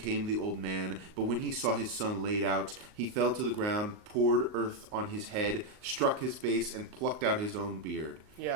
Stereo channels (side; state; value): left; late; 38 ms